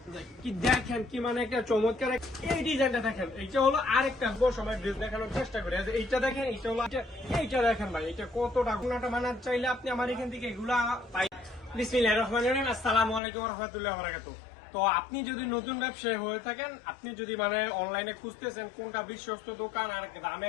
কি দেখেন কি মানে একটা চমৎকার এই ডিজাইনটা দেখেন। এইটা হলো আরেকটা সময় ড্রেস দেখানোর চেষ্টা করি। এইটা দেখেন, এইটা হলো এইটা দেখেন ভাই, এটা কতটা গুণাটা মানার চাইলে আপনি আমার এখান থেকে এগুলা পাই। বিসমিল্লাহির রহমানির রহিম, আসসালামু আলাইকুম ওয়া রাহমাতুল্লাহি ওয়া বারাকাতুহু। তো আপনি যদি নতুন ব্যবসায়ী হয়ে থাকেন, আপনি যদি মানে অনলাইনে খুঁজতেছেন কোনটা বিশ্বস্ত দোকান আর দামে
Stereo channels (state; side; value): drops out; right; at 13.2 s